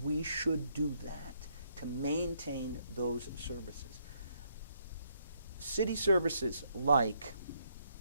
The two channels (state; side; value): inverted; both; correlation -0.73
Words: we should do that to maintain those services. city services like